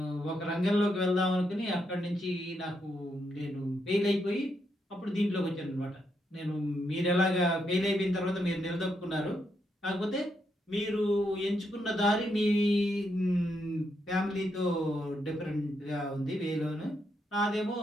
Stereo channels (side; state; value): both; normal; correlation 0.80